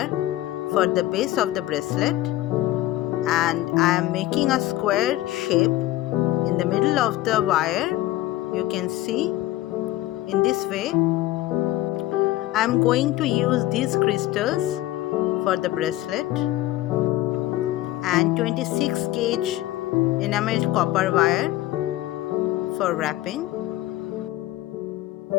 for the base of the bracelet, and I am making a square shape in the middle of the wire. You can see in this way. I am going to use these crystals for the bracelet and 26 gauge enameled copper wire for wrapping.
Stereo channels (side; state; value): right; quieter; 16.0 dB